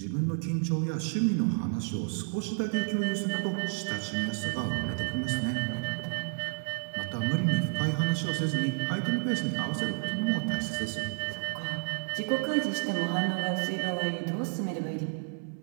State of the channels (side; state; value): left; silent; 57 dB below the other